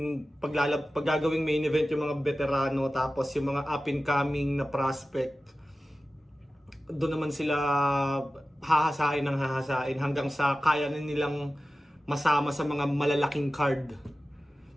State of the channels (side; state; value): both; normal; correlation 0.95